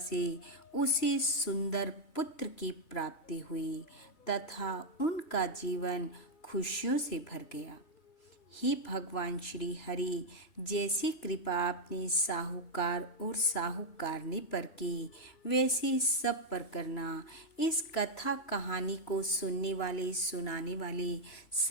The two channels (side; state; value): right; late; 3.0 ms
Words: उसे सुंदर पुत्र की प्राप्ति हुई तथा उनका जीवन खुशियों से भर गया। ही भगवान श्री हरि, जैसी कृपा आपने साहूकार और साहूकारनी पर की वैसी सब पर करना। इस कथा कहानी को सुनने वाले सुनाने वाले